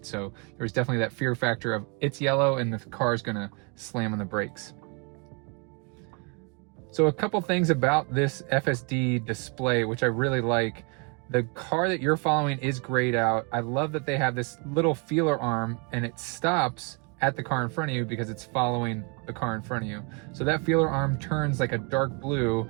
So there was definitely that fear factor of it's yellow and the car's gonna slam on the brakes. So a couple things about this FSD display, which I really like. The car that you're following is grayed out. I love that they have this little feeler arm and it stops at the car in front of you because it's following the car in front of you. So that feeler arm turns like a dark blue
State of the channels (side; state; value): left; quieter; 34.8 dB